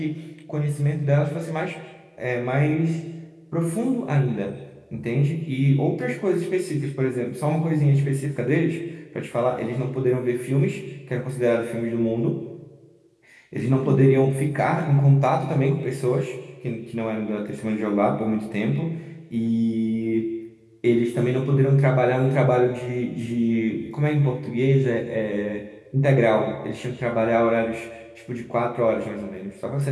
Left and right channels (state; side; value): identical; both; correlation 1.00